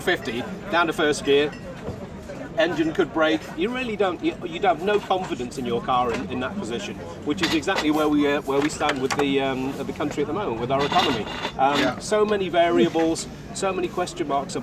down to 1st gear. Engine could break. You really don't. You'd have no confidence in your car in that position, which is exactly where we stand with the country at the moment with our economy. So many variables, so many question marks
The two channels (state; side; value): identical; both; correlation 1.00